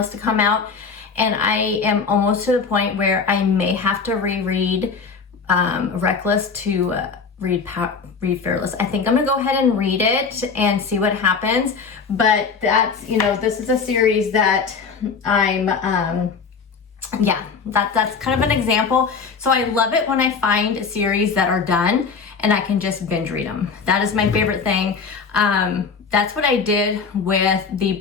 to come out, and I am almost to the point where I may have to reread Reckless to read Fearless. I think I'm gonna go ahead and read it and see what happens. But that's, this is a series that I'm, that's kind of an example. So I love it when I find series that are done and I can just binge read them. That is my favorite thing. That's what I did with the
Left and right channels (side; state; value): right; quieter; 5.3 dB